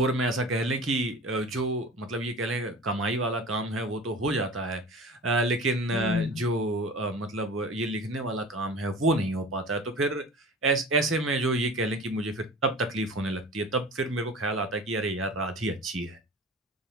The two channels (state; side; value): normal; both; correlation 0.38